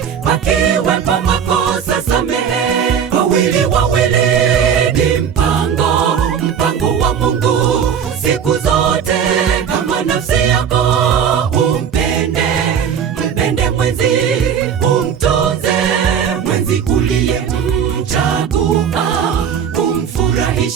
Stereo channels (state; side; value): quieter; left; 7.8 dB